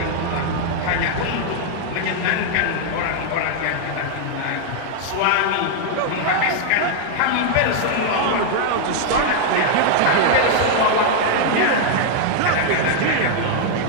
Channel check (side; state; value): both; different; correlation 0.00